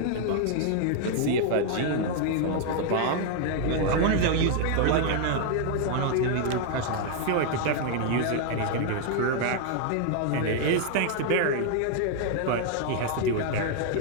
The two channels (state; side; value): different; both; correlation 0.00